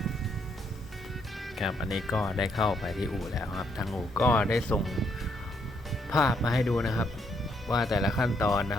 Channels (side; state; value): both; normal; correlation 0.74